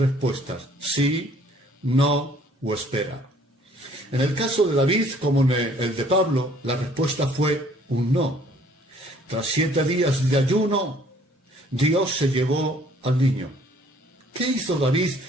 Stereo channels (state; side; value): normal; both; correlation 0.58